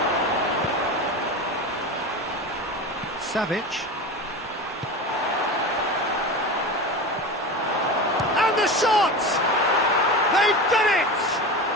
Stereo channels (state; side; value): normal; both; correlation 0.27